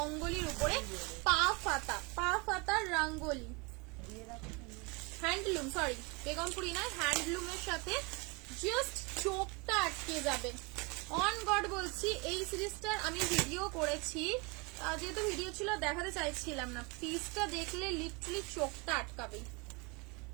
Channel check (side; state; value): left; quieter; 28.8 dB